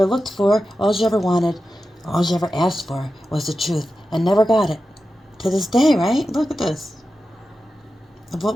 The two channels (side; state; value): both; normal; correlation 0.92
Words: looked for, all you ever wanted, all you ever asked for was the truth and never got it. To this day, right? Look at this. Of what